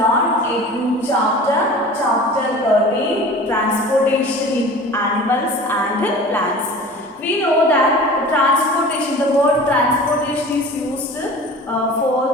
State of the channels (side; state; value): both; normal; correlation 0.40